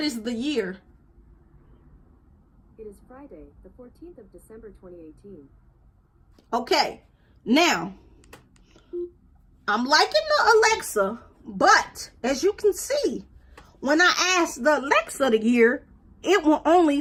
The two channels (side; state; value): both; identical; correlation 1.00